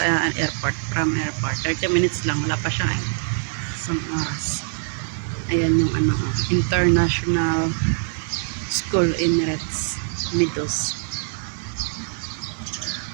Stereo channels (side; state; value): left; silent; 63 dB below the other